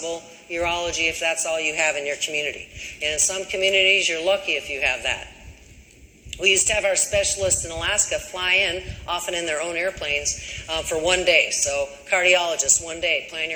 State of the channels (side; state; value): both; identical; correlation 1.00